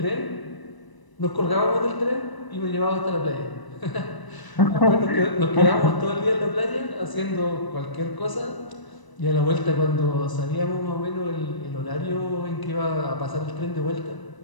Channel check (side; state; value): right; late; 1.0 ms